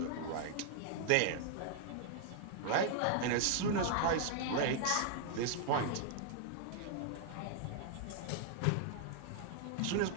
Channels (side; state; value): both; different; correlation 0.00